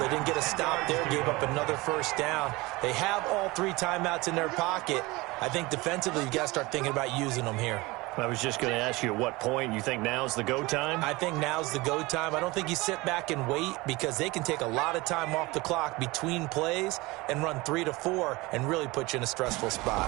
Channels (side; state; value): left; quieter; 22.3 dB